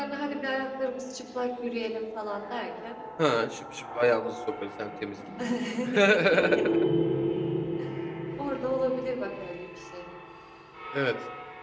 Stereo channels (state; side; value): identical; both; correlation 1.00